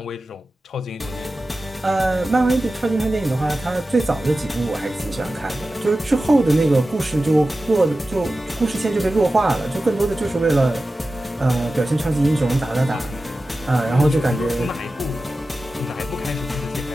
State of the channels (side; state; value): both; normal; correlation 0.94